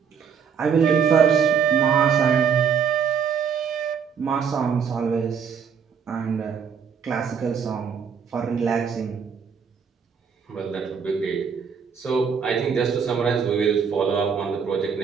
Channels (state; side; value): quieter; left; 6.7 dB